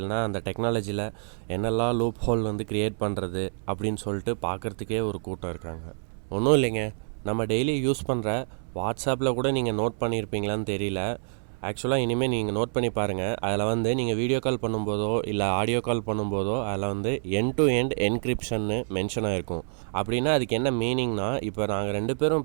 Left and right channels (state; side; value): silent; left; 60 dB below the other